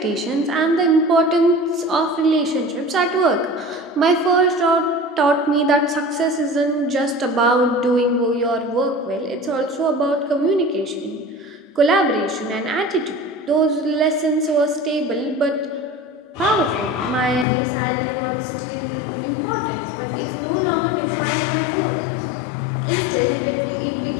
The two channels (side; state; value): right; drops out; at 17.4 s